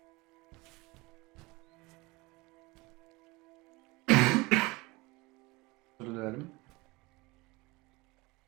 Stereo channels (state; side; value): quieter; left; 23.5 dB